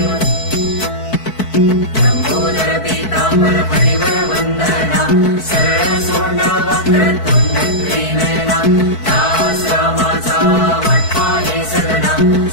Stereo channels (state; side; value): late; right; 4.6 ms